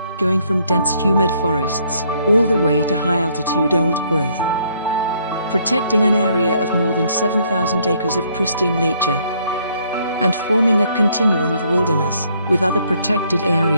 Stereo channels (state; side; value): inverted; both; correlation -0.67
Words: going from dense humid forests all the way to high-altitude old-growth, protecting an area of more than 7,000 acres of pristine nature, and forming a continuum of wilderness with other protected